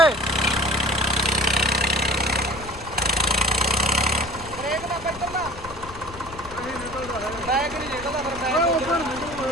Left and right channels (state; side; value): noise; left; rumble, 16 dB below the sound